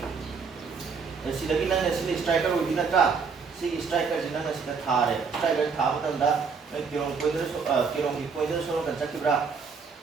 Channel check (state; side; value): quieter; left; 5.4 dB